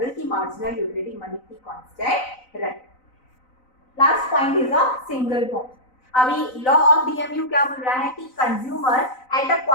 कि मार्जिनल यूटिलिटी मनी की कांस्टेंट रहे। Last point is a single bond. अभी लॉ ऑफ डीएमयू क्या बोल रहा है कि consumer eight a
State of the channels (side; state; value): right; late; 3.9 ms